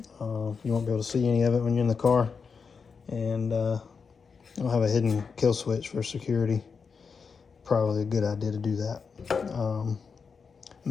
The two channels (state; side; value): quieter; right; 5.5 dB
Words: You won't be able to see any of it when you're in the car, and I'll have a hidden kill switch for security. Probably a good idea to do that.